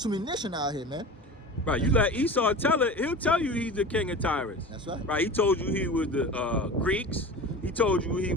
nation out here, man. Right, you let Esau tell it, he'll tell you he's the king of Tyrus. That's right. Right, he told you he was the Greeks. He told you he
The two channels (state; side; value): normal; both; correlation 0.33